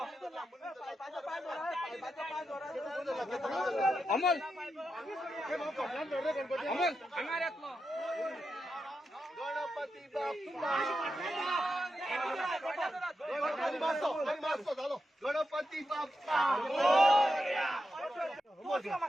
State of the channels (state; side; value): normal; both; correlation 0.87